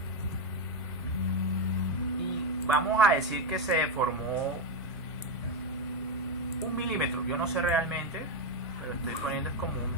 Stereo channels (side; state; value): both; normal; correlation 0.07